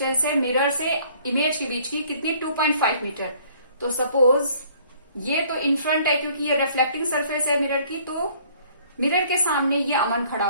है मिरर से इमेज के बीच की कितनी 2.5 मीटर। तो सपोज ये तो इन फ्रंट है क्योंकि ये रिफ्लेक्टिंग सरफेस है मिरर की, तो मिरर के सामने ये अमन खड़ा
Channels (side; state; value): both; inverted; correlation -0.58